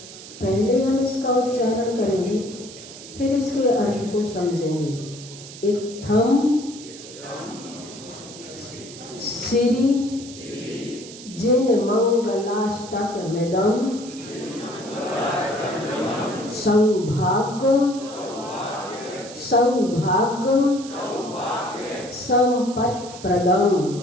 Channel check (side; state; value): right; noise; hiss, 15 dB below the sound